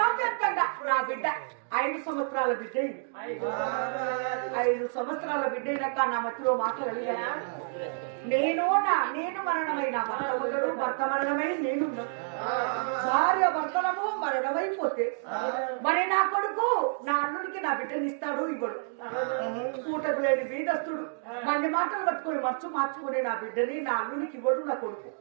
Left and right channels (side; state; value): left; silent; digital silence